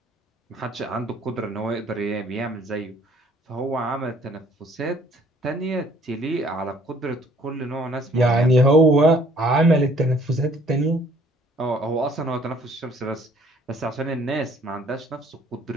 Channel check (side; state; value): both; normal; correlation 0.59